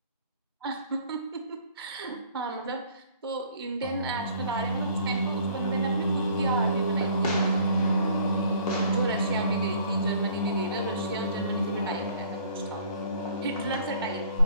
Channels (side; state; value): both; inverted; correlation -0.55